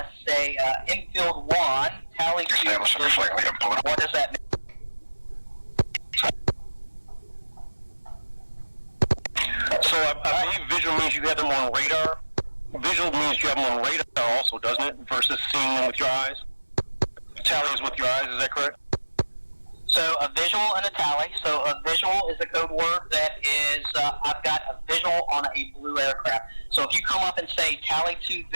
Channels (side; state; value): both; inverted; correlation -1.00